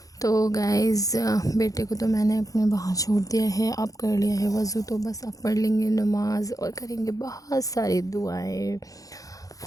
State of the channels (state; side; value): late; right; 0.17 ms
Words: तो गाइस बेटे को तो मैंने अपने बाहर छोड़ दिया है, अब कर लिया है वज़ू, तो बस अब पढ़ लेंगे नमाज़ और करेंगे बहुत सारी दुआएं।